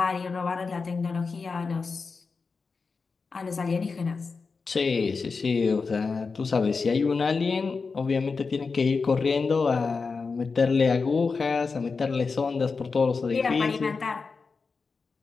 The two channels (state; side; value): quieter; right; 4.7 dB